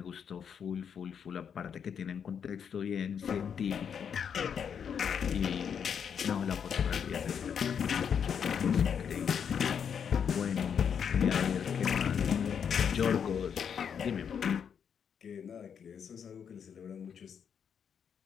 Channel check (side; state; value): right; quieter; 7.5 dB